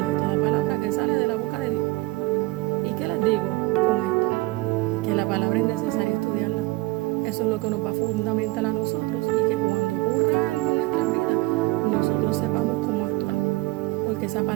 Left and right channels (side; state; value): left; quieter; 21.0 dB